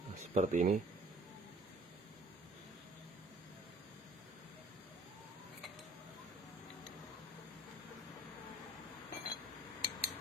Nah, seperti ini.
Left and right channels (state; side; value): normal; both; correlation 0.53